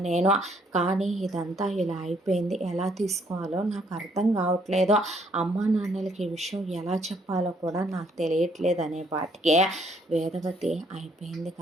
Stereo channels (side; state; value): both; normal; correlation 0.67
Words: నేను. కానీ ఇదంతా ఇలా అయిపోయింది. ఎలా తీసుకోవాలో నాకు అర్థం కావట్లేదు. అమ్మా నాన్నలకి ఈ విషయం ఎలా చెప్పాలో కూడా నాకు తెలియట్లేదు అనే పాటికే వేదవతి అయిపోయింది